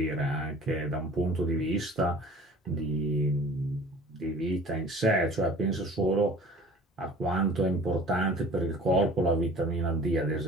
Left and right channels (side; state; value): both; normal; correlation 0.45